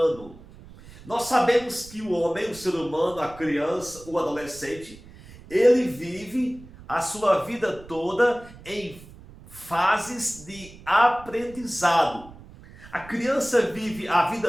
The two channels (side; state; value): right; noise; rumble, 19 dB below the sound